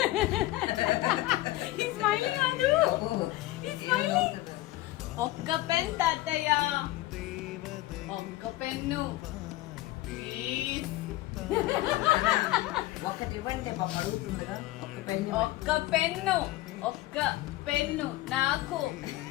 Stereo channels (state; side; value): quieter; right; 17.3 dB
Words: స్మైలింగ్ కాదు, స్మైలింగ్. ఒక్క పెన్ తాతయ్య, ఒక్క పెన్ను ప్లీజ్. ఒక్కటి ఇవ్వండి పాప అడుగుతుందిగా. ఒక్క పెన్, ఒక్క పెన్ను, ఒక్క పెన్ను నాకు